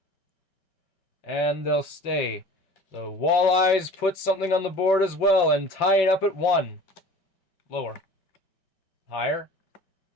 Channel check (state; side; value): late; right; 5.2 ms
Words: And they'll stay. The Walleyes put something on the board as well and tie it up at 1. Lower. Higher.